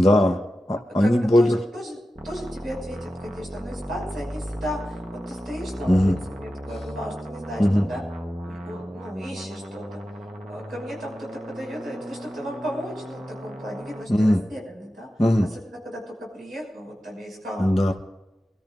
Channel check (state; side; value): normal; both; correlation 0.92